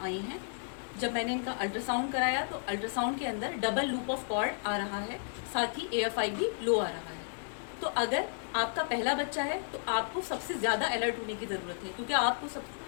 आई हैं। जब मैंने इनका अल्ट्रासाउंड कराया तो अल्ट्रासाउंड के अंदर डबल लूप ऑफ कॉर्ड आ रहा है, साथ ही AFI भी लो आ रहा है। तो अगर आपका पहला बच्चा है तो आपको सबसे ज़्यादा अलर्ट होने की ज़रूरत है, क्योंकि आपको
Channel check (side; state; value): right; silent; 56 dB below the other